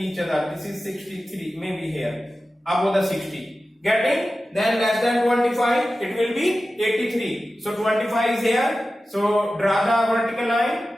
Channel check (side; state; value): both; normal; correlation 0.94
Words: other. This is 63, maybe here above the 60. Getting? Then less than 25, it will be 83. So 25 is here. So draw the vertical